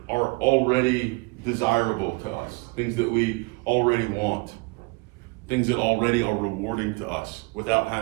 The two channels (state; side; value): quieter; left; 27.7 dB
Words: are already desirable to us, things that we already want, things that already are rewarding to us without